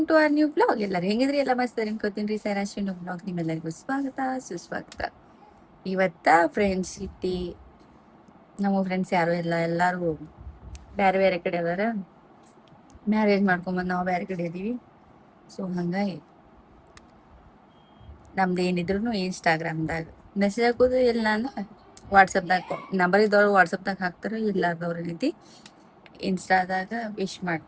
to our new blog. ಎಲ್ಲರೂ ಹೆಂಗಿದ್ರಿ? ಎಲ್ಲ ಮಸ್ತ್ ಅನ್ಕೋತೀನಿ ರೀ. ಸೈರಾಶ್ರೀ ಬ್ಲಾಗ್ ನಿಮ್ಮೆಲ್ಲರಿಗೂ ಸ್ವಾಗತ ಸುಸ್ವಾಗತ. ಇವತ್ತ ಫ್ರೆಂಡ್ಶಿಪ್ ಡೇ. ನಮ್ಮ ಫ್ರೆಂಡ್ಸ್ ಯಾರು ಇಲ್ಲ, ಎಲ್ಲರೂ ಬೇರೆ ಬೇರೆ ಕಡೆ ಅದಾರ. ಮ್ಯಾರೇಜ್ ಮಾಡ್ಕೊಂಬಂದು ನಾವು ಬೇರೆ ಕಡೆ ಇದೀವಿ. ಸೊ ಹಂಗಾಗಿ ನಮ್ದು ಏನಿದ್ರು ಇನ್ಸ್ಟಾಗ್ರಾಮ್ದಾಗ ಮೆಸೇಜ್ ಹಾಕೋದು, ಇಲ್ಲ ಅಂದ್ರೆ ವಾಟ್ಸಪ್ದಾಗ ನಂಬರ್ ಇದ್ದವ್ರು ವಾಟ್ಸಪ್ದಾಗ ಹಾಕ್ತಾರೆ, ಇಲ್ಲಾರ್ದವ್ರ ರೀತಿ ಇನ್ಸ್ಟಾದಾಗ ವಿಶ್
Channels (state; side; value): identical; both; correlation 1.00